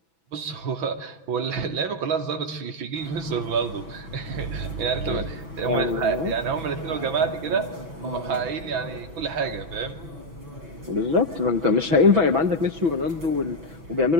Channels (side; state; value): left; late; 6.1 ms